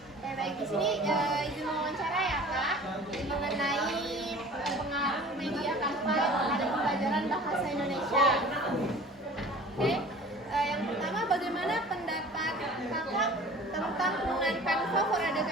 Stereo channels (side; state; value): both; normal; correlation 0.44